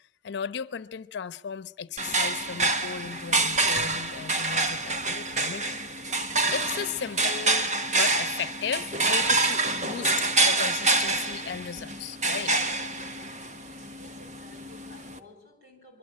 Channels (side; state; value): both; normal; correlation -0.07